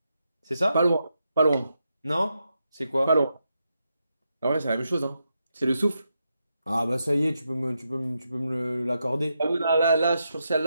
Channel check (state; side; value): inverted; both; correlation -0.84